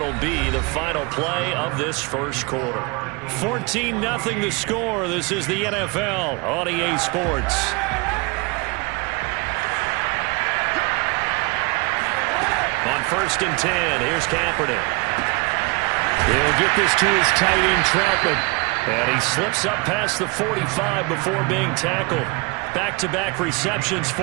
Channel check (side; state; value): left; quieter; 27.7 dB